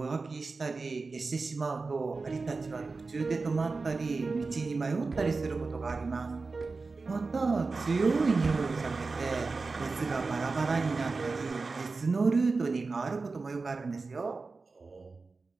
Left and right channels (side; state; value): left; quieter; 4.0 dB